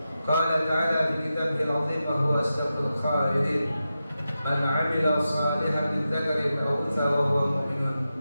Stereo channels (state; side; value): inverted; both; correlation -0.91